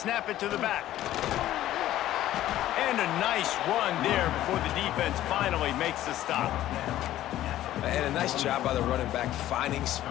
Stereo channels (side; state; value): right; quieter; 13.7 dB